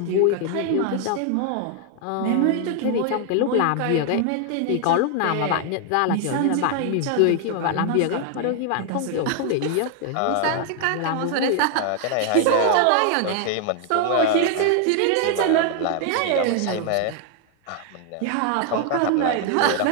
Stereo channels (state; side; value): different; both; correlation 0.00